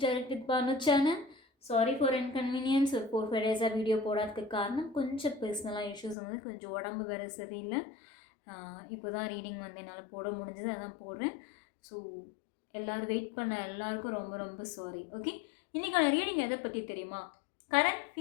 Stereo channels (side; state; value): right; drops out; at 6.2 s